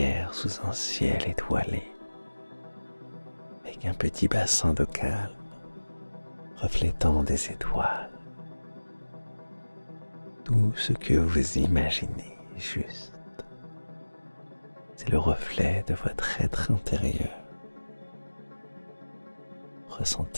sous un ciel étoilé, avec un petit bassin d'eau calme reflétant des étoiles. Tout ce que vous imaginez juste, c'est le reflet de votre être intérieur.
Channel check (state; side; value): inverted; both; correlation -1.00